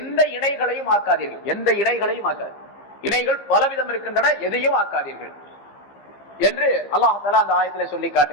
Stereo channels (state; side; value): late; right; 15 ms